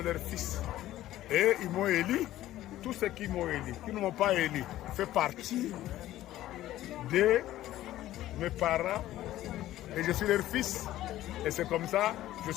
leurs fils. Et ils m'ont élu, tous ceux qui m'ont élu, qui ne m'ont pas élu, fait partie de mes parents et je suis leur fils. Et c'est comme ça je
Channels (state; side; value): quieter; right; 14.3 dB